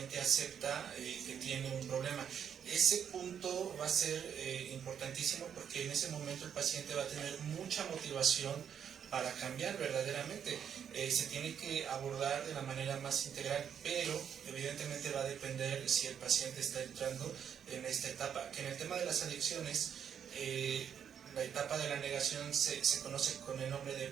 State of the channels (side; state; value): left; quieter; 8.3 dB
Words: acepta que tiene un problema. Ese punto va a ser importantísimo porque en ese momento el paciente va a tener mucha motivación para cambiar verdaderamente. Se tiene que abordar de la manera más integral, pero evidentemente va a depender si el paciente está entrando en esta etapa, que en el tema de las adicciones, la etapa de la negación se conoce con el nombre de